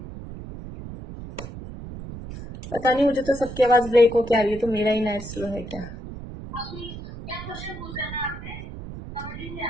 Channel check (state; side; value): noise; right; rumble, 11 dB below the sound